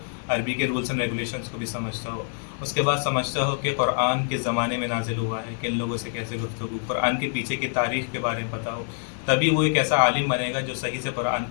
अरबी के रूल्स एंड रेगुलेशंस को भी समझता हो। उसके बाद समझता हो कि कुरान किस ज़माने में नाजिल हुआ है, किन लोगों से कैसे गुफ्तगू, कुरान के पीछे की तारीख़ के बारे में पता हो। तभी वो एक ऐसा आलिम बनेगा जो सही से कुरान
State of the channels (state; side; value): silent; right; 61 dB below the other